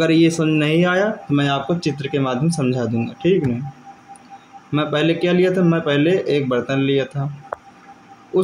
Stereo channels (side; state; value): both; identical; correlation 1.00